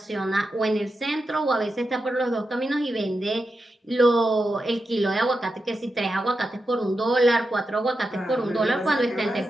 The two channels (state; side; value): normal; both; correlation 0.89